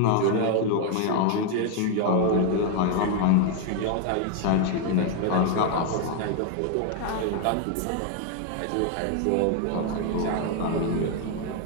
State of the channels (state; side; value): different; both; correlation 0.00